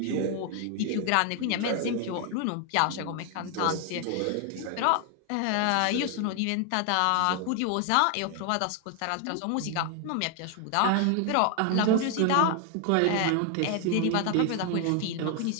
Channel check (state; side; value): different; both; correlation 0.01